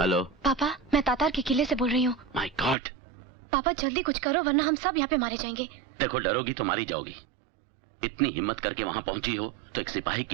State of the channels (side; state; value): left; drops out; at 2.8 s